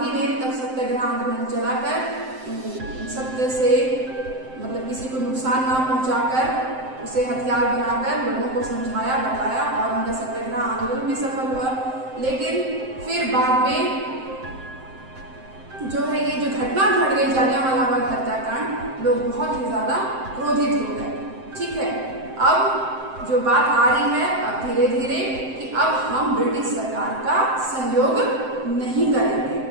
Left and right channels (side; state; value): left; late; 7.7 ms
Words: ने तब सत्याग्रह आंदोलन चलाकर सत्य से, मतलब किसी को नुकसान ना पहुंचाकर उसे हथियार बनाकर लोगों को समझाया, बताया और उनका सत्याग्रह आंदोलन भी सफल हुआ। लेकिन फिर बाद में जो है ये जो घटना घट गई जालियांवाला बाग हत्याकांड, लोग बहुत ही ज्यादा क्रोधित हो गए। ठीक है, अब जो बात आ रही है अब धीरे धीरे कि अब हम ब्रिटिश सरकार का सहयोग नहीं करेंगे।